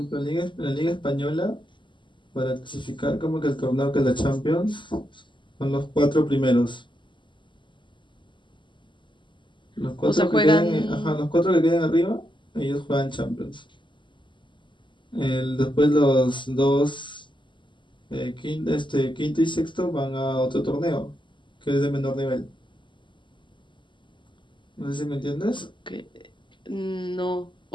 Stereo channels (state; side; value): late; right; 0.24 ms